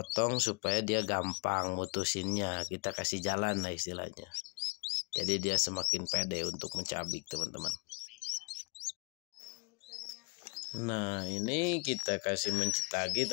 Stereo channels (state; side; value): quieter; right; 29.2 dB